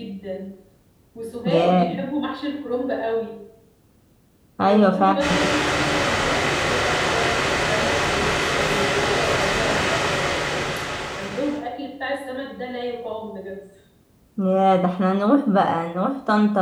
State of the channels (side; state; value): both; identical; correlation 1.00